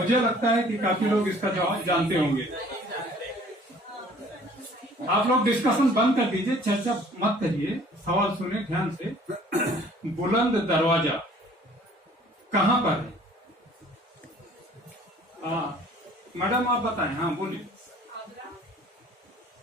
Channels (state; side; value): normal; both; correlation 0.54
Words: लगता है कि काफी लोग इसका जवाब जानते होंगे। आप लोग डिस्कशन बंद कर दीजिए, चर्चा मत करिए, सवाल सुने ध्यान से। बुलंद दरवाजा कहाँ पर है? मैडम आप बताएं। हाँ बोलिए।